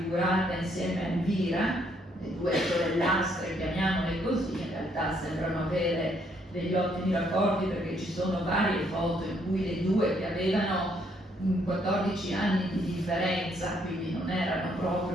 insieme a Elvira, le 2 sorellastre, chiamiamole così, in realtà sembrano avere degli ottimi rapporti perché ci sono varie foto in cui le 2, che avevano 14 anni di differenza, quindi non erano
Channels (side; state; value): both; normal; correlation 0.70